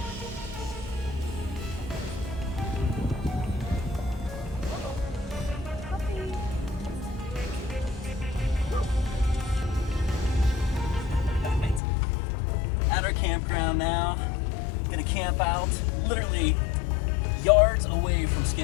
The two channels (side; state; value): right; drops out; at 11.8 s